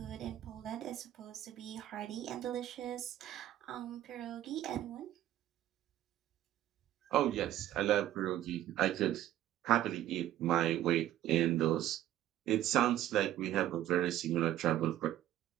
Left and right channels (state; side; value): quieter; left; 12.9 dB